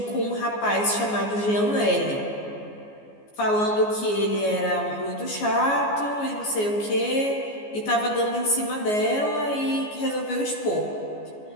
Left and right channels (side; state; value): right; late; 14 ms